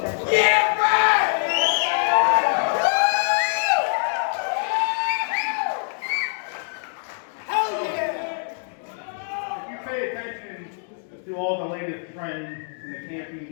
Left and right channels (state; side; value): silent; right; digital silence